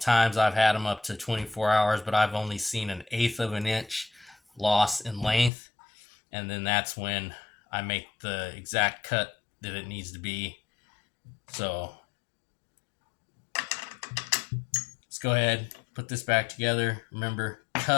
I've had them up to 24 hours, but I've only seen 1/8 of an inch loss in length. And then that's when I make the exact cut that it needs to be. So let's go ahead, put this back together. Remember,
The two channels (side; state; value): right; drops out; at 5.5 s